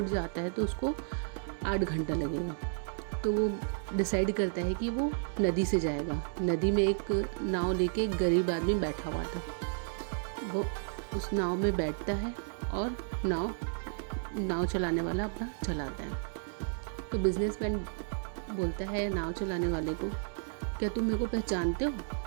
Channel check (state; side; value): silent; left; digital silence